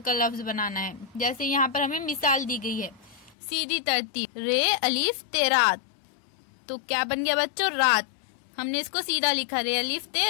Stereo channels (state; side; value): drops out; right; at 3.4 s